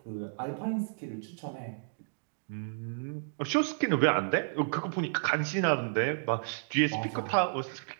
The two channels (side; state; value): left; silent; digital silence